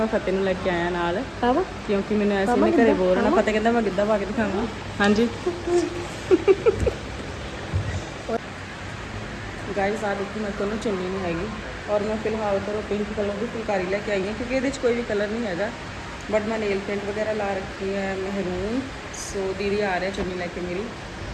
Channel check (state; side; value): identical; both; correlation 1.00